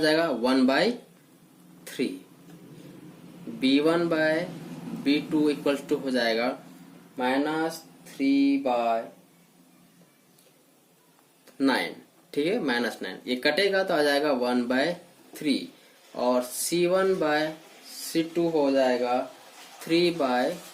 1/3, b1/b2 इक्वल्स टू हो जाएगा माइनस 3/9। ठीक है, माइनस 9 ये कटेगा तो आ जाएगा 1/3 और c1/c2 हो जाएगा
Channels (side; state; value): both; identical; correlation 1.00